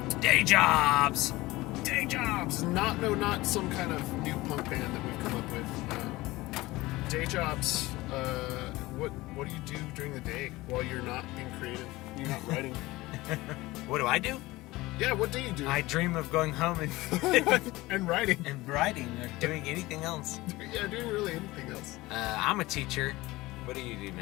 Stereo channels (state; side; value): quieter; right; 19.6 dB